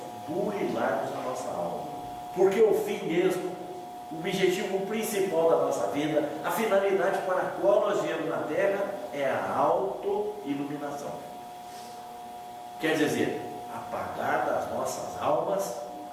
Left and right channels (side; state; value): both; identical; correlation 1.00